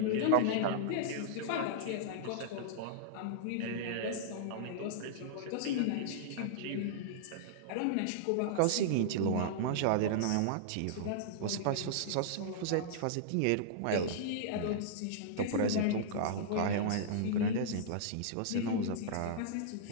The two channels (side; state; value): both; different; correlation -0.02